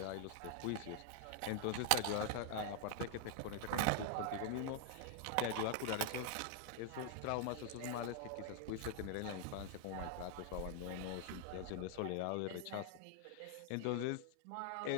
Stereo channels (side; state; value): both; different; correlation 0.00